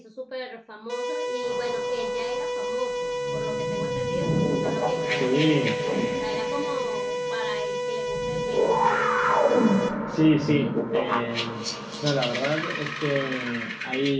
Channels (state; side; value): identical; both; correlation 1.00